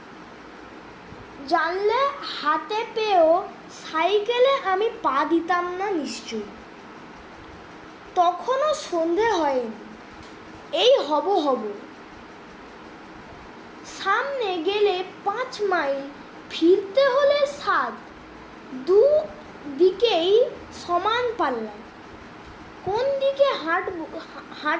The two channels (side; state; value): both; identical; correlation 1.00